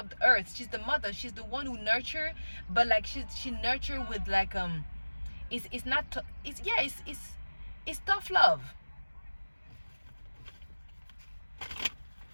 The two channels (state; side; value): inverted; both; correlation -1.00